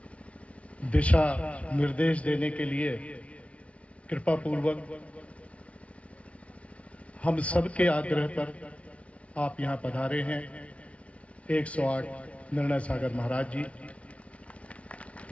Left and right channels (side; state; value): right; late; 0.063 ms